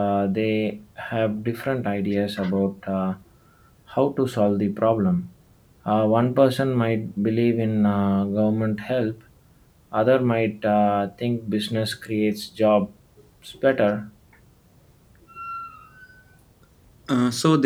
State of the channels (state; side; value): identical; both; correlation 1.00